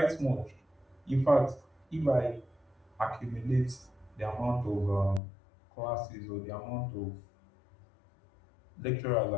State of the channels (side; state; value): right; drops out; at 5.2 s